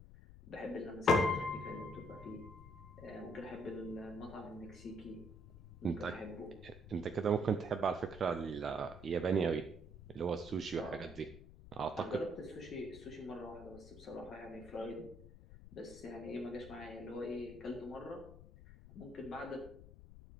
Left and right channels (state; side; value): noise; left; rumble, 16 dB below the sound